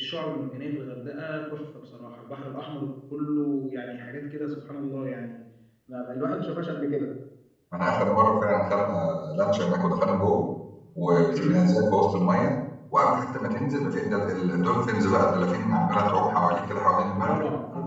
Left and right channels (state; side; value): identical; both; correlation 1.00